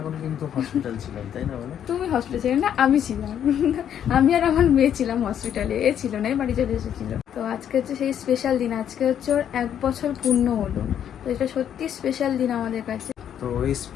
কিন্তু হসপিটাল ছিলাম, তাই না? বলো তুমি হসপিটালে ছিলে না, আমি ছিলাম। আমি আর আমার মেয়ে ছিলাম হসপিটালে, এ ছিল না, বাড়ি চলে এসেছিল। তো আজকে হচ্ছে সেই স্পেশাল দিন, আজকে হচ্ছে ওর 1 বছর পূর্ণ হলো। তো এটা সত্যি স্পেশাল দিন আমাদের কাছে। তো এই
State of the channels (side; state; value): right; quieter; 9.5 dB